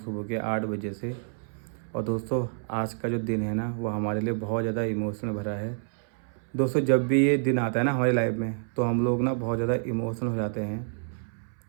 सुबह के 8 बजे से। और दोस्तों, आज का जो दिन है ना, वो हमारे लिए बहुत ज़्यादा इमोशनल भरा है। दोस्तों, जब भी ये दिन आता है ना हमारी लाइफ में, तो हम लोग ना बहुत ज़्यादा इमोशनल हो जाते हैं।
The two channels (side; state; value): left; silent; 59 dB below the other